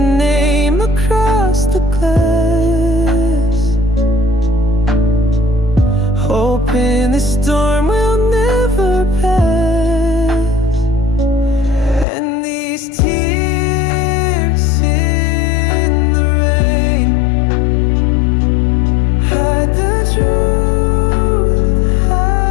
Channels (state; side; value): drops out; right; at 12.1 s